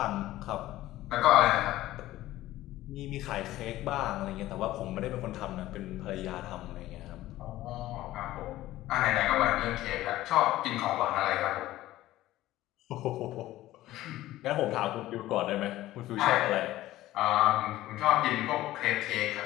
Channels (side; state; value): right; quieter; 15.6 dB